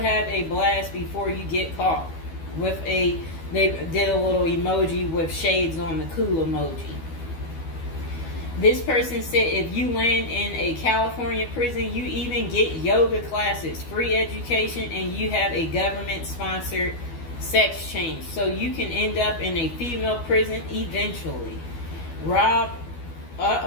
a blast before you get caught. They did a little emoji with shades on the cool emoji. This person said if you land in a California prison, you even get yoga classes, free education, and you have a government-sponsored sex change. So you can end up in a female prison eventually. Rob,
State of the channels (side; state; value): right; late; 12 ms